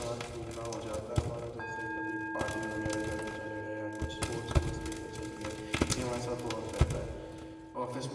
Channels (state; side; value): identical; both; correlation 1.00